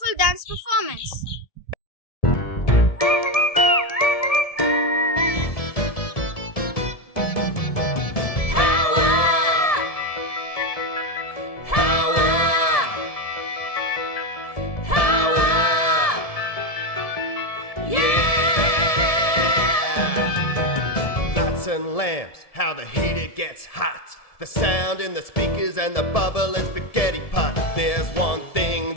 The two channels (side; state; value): right; late; 1.7 ms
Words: dance performance. And lamps, how the heater gets hot, the sound in the speakers and the bubble and spaghetti pot. There's one thing